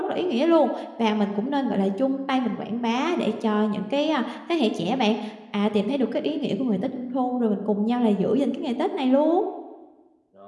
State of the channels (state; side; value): identical; both; correlation 1.00